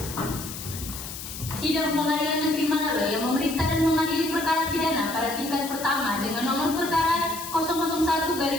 Sidang Pengadilan Negeri Manado yang memeriksa dan mengadili perkara pidana pada tingkat pertama dengan nomor perkara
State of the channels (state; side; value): noise; left; hiss, 10 dB below the sound